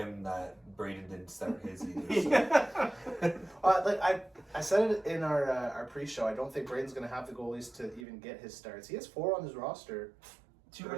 that Braden didn't start his either. So. I said it in our pre-show. I don't think Braden's going to have the goalies to even get his starts. He has 4 on his roster. 2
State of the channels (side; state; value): left; drops out; at 8.1 s